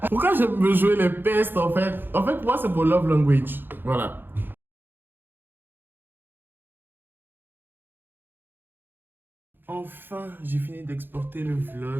Pourquoi j'aime me jouer les pestes en fait? En fait, moi, c'est mon love language. Voilà. Enfin, j'ai fini d'exporter le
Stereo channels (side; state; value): left; late; 0.098 ms